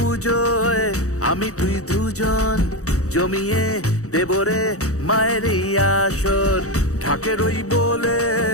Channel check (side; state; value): right; late; 0.65 ms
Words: আমি তুই দুজন জমিয়ে দেবরে মায়ের এই আসর। ঢাকের ওই বলে